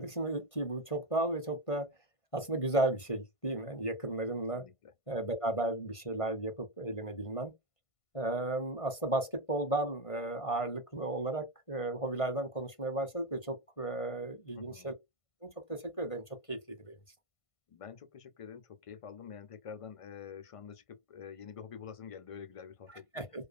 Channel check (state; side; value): late; right; 1.5 ms